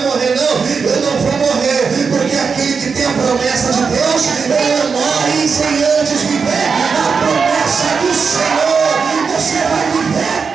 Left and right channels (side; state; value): left; quieter; 5.5 dB